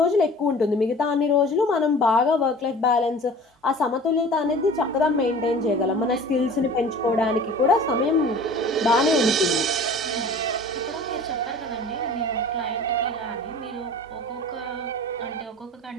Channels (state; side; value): normal; both; correlation 0.43